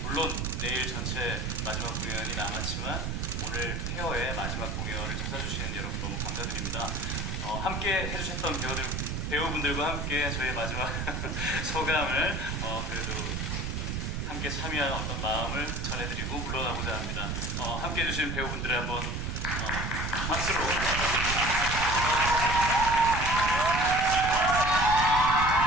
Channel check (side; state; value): right; noise; rumble, 2 dB below the sound